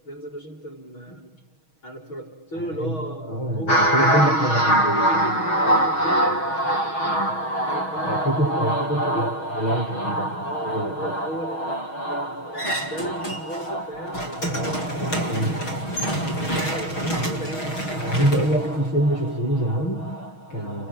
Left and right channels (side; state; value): right; late; 6.3 ms